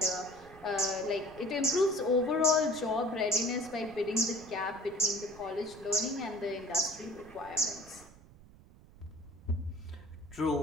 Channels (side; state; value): right; noise; rumble, 22 dB below the sound